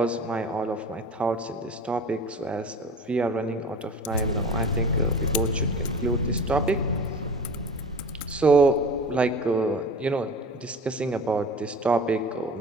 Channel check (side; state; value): both; normal; correlation 0.38